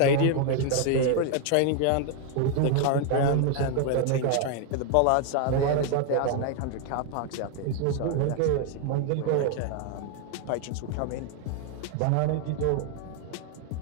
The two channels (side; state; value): both; different; correlation 0.00